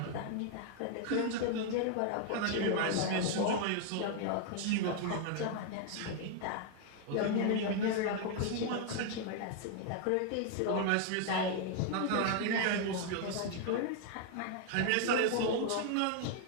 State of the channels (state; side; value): different; both; correlation 0.00